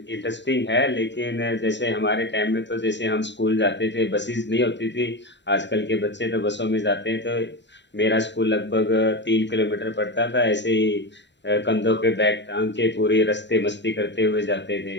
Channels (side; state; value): right; late; 0.52 ms